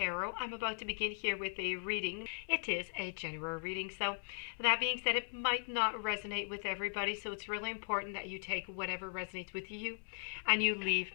I'm about to begin here with a reading. It is a general reading, so that being said, it might not resonate with everybody, so it's really important that you take whatever resonates with you and you leave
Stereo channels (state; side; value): silent; right; 52 dB below the other